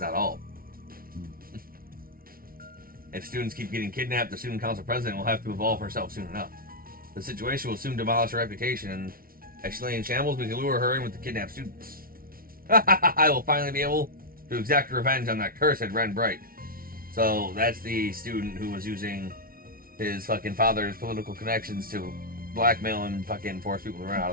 not all. If students keep getting kidnapped, the student council president will have to evolve herself soon enough. The situation will soon demolish her reputation, and as she lay in shambles, we can lure her in with the kidnapped students. I will finally be able to exact revenge on that cursed Ren Bright. So that's the student who was using his fucking father's political connections to blackmail and fucking force people to run out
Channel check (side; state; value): left; late; 0.43 ms